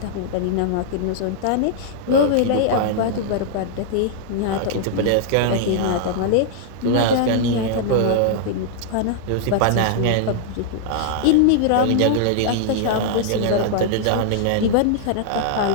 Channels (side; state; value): both; different; correlation -0.01